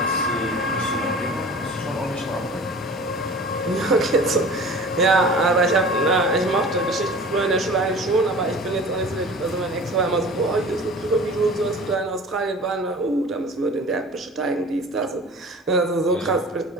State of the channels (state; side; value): normal; both; correlation 0.41